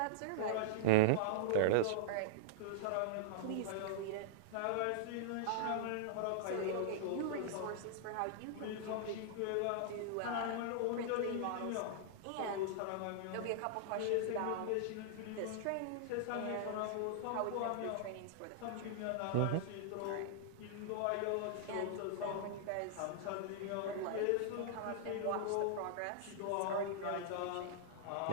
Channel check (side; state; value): both; different; correlation -0.02